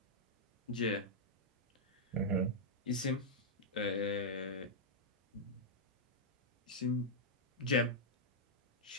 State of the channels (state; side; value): normal; both; correlation -0.07